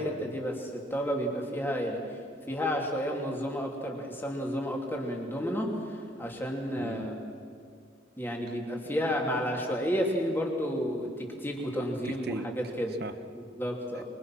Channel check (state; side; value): normal; both; correlation 0.66